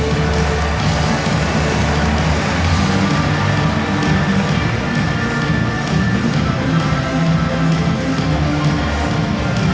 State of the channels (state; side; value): identical; both; correlation 1.00